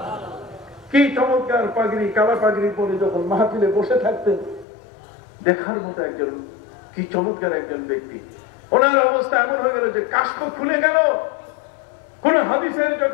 কি চমৎকার পাগড়ি, কালা পাগড়ি পরে যখন মাহফিলে বসে থাকতেন, দেখার মতো একজন, কি চমৎকার একজন ব্যক্তি। ওনার অবস্থা এমন হয়ে গেল যে কাষ্ঠ খুলে গেল। কোন হাদিসের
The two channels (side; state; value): right; drops out; at 4.7 s